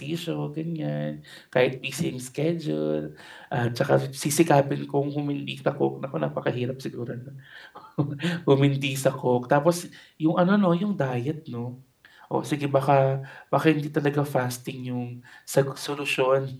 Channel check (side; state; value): both; identical; correlation 1.00